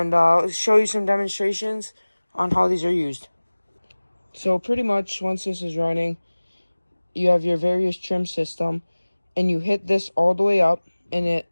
I'll show you some demonstrations on how these are used. So, pretty much, once this is running, you have your various trim system, and you hit this all the way up, and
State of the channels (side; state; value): both; inverted; correlation -1.00